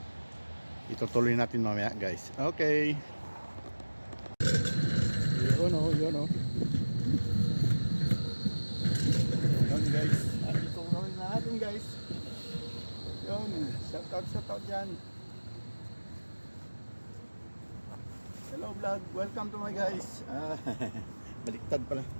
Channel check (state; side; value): inverted; both; correlation -1.00